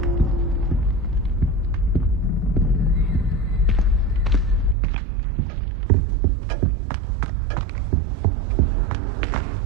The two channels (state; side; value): drops out; left; at 4.8 s